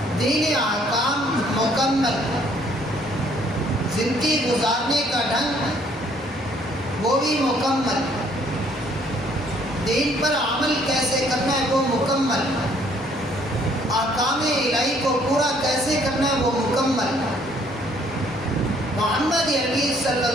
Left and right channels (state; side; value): normal; both; correlation 0.63